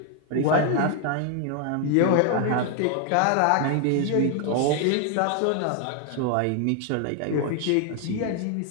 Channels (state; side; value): different; both; correlation 0.00